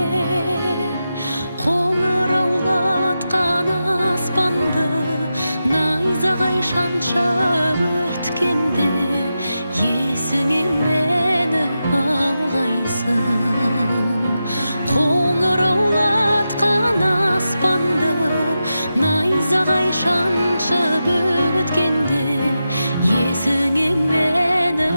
қоңыраулатқан аспанды найзағай шаншып өткенде, есіңе мені алғайсың. Қоңыраулатқан аспанды найзағай шаншып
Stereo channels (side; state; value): both; inverted; correlation -0.90